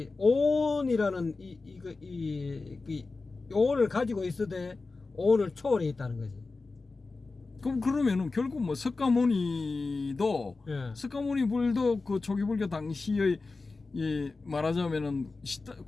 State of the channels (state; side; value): quieter; right; 3.8 dB